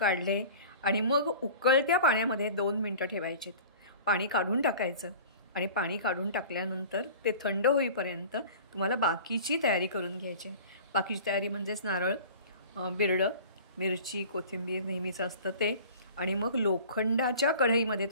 आणि मग उकळत्या पाण्यामध्ये 2 मिनिटं ठेवायचे। पाणी काढून टाकायचं आणि पाणी काढून टाकल्यानंतर ते थंड होईपर्यंत तुम्हाला बाकीची तयारी करून घ्यायची। बाकीची तयारी म्हणजेच नारळ, बिरडं, मिरची, कोथिंबीर नेहमीचं असतं ते, आणि मग लोखंडाच्या कढईमध्ये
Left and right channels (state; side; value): inverted; both; correlation -0.42